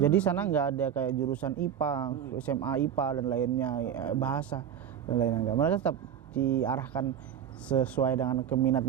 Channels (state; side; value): quieter; left; 9.0 dB